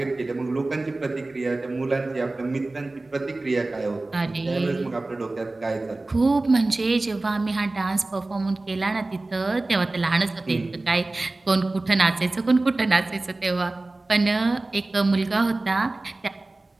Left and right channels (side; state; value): left; quieter; 3.0 dB